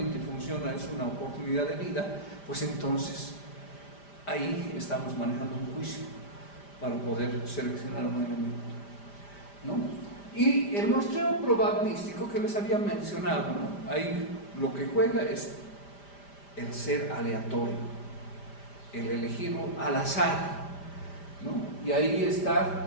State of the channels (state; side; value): late; right; 5.0 ms